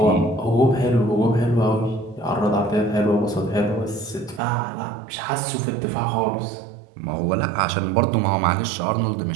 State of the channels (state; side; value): drops out; left; at 4.4 s